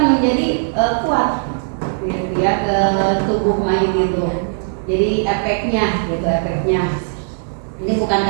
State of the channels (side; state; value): left; silent; digital silence